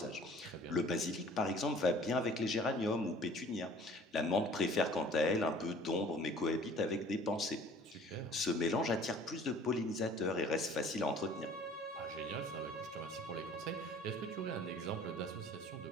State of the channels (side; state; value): both; normal; correlation 0.50